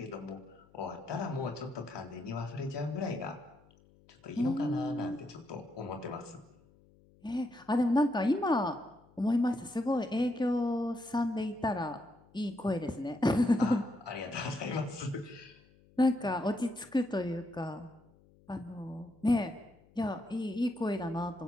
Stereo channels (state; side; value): noise; left; hum, 28 dB below the sound